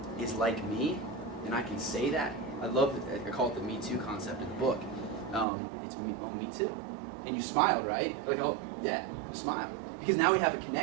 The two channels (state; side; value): drops out; left; at 5.5 s